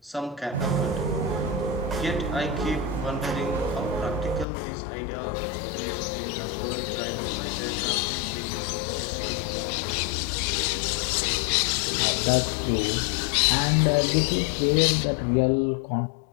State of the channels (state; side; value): drops out; right; at 4.5 s